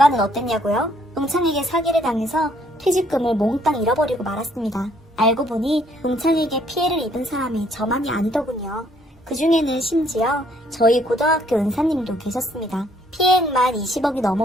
어땠냐고요? 동창에게 사기를 당해서 퇴직금을 몽땅 잃어버리고 말았습니다. 알고 보니 동창에게 피해를 입은 사람이 저만이 아니더군요. 그 중에는 심지어 저희 고등학교 은사님도 계셨습니다. 피해액만 20억이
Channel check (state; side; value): normal; both; correlation 0.65